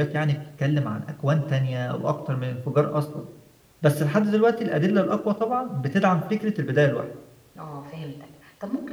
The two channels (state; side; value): identical; both; correlation 1.00